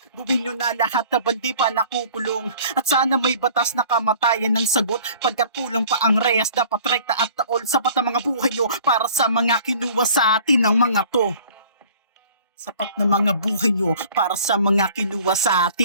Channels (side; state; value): both; inverted; correlation -0.49